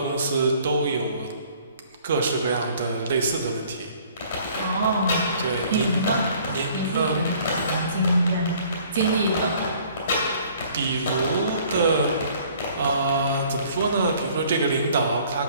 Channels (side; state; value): both; inverted; correlation -0.56